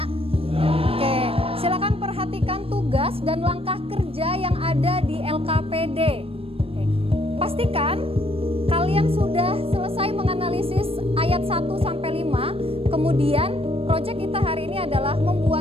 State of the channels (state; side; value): late; left; 0.28 ms